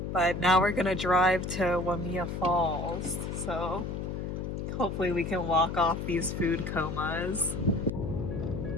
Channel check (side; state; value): left; noise; hum, 4 dB below the sound